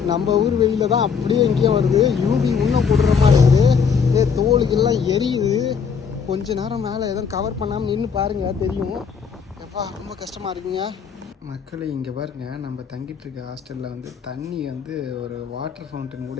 நம்ம ஊர் வெளியில் தான் அப்படியே எங்கேயும் வருது. யூபி இன்னும் போடுற மாதிரி இருக்குது. தோலுக்கெல்லாம் எரியுது. கொஞ்ச நேரம் மேலே எதுவும் கவர் பண்ணாமல் நின்று பாருங்கள் தெரியும். எப்பா ரொம்ப கஷ்டமாக இருக்குங்க. மக்களை இங்கே பாருங்க, நம்ம தங்கிட்டு இருக்க ஹாஸ்டலில் வந்து தண்ணி வந்து ஒரு வாட்டர் ஃபவுண்டன்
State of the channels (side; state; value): right; quieter; 6.2 dB